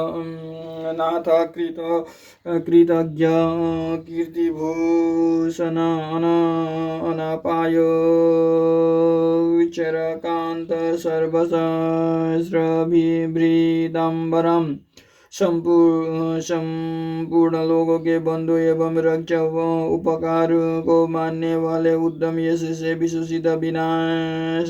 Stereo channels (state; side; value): identical; both; correlation 1.00